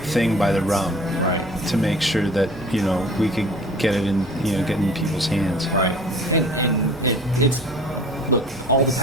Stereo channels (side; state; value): both; normal; correlation 0.47